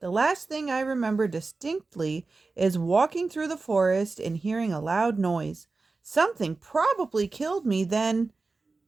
last thing I remember distinctly is walking through the forest and hearing a loud noise. Something probably killed me then,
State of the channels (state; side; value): quieter; left; 3.8 dB